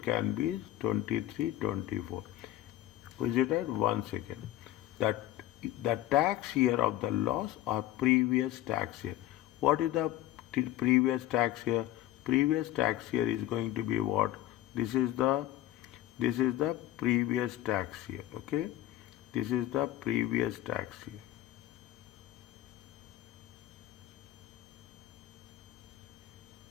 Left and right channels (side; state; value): right; quieter; 14.1 dB